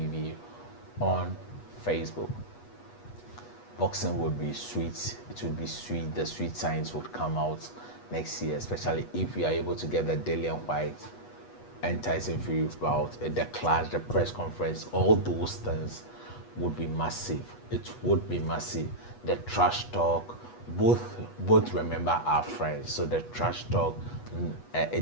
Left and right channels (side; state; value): right; late; 8.3 ms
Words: on Facebook. Boxing would be sweet. It would be sweet. The sweet signs would come out next year, especially if we are able to get the Dillian Whyte and Tyson Fury bout, the clash, the press conference, all those things would be massive. It would be massive. The trash talk, both remember our friends, so the trash talk,